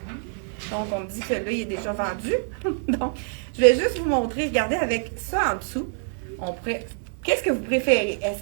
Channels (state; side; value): silent; left; 61 dB below the other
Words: Donc, on me dit que celui-là, il est déjà vendu. Donc, je vais juste vous montrer. Regardez, avec ça en dessous, qu'est-ce que vous préférez? Est-ce